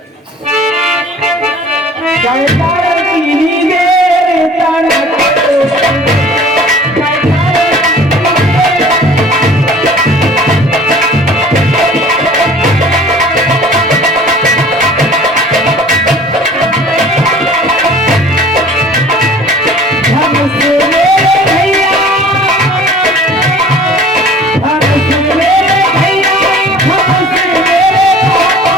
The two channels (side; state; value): both; normal; correlation 0.48